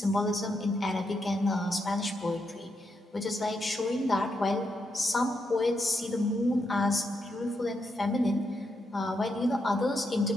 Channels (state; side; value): normal; both; correlation 0.82